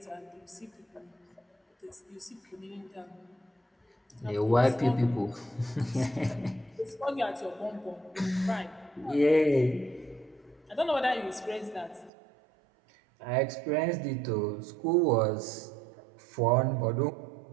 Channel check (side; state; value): left; drops out; at 12.1 s